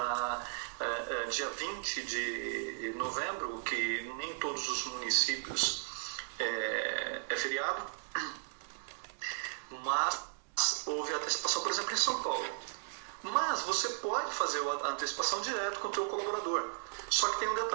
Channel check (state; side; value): silent; left; digital silence